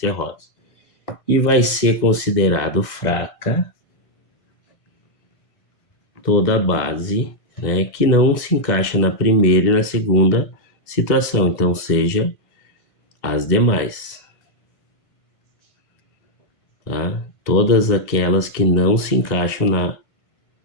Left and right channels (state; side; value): late; right; 1.5 ms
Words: E vai ser considerado fraca toda a base, né, que não se encaixa na primeira e na segunda situação, então seja as demais, tá? Todas aquelas que não se encaixam